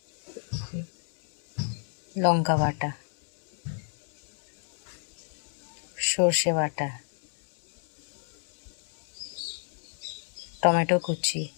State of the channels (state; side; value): silent; right; digital silence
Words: লঙ্কা বাটা, সর্ষে বাটা, টমেটো কুচি,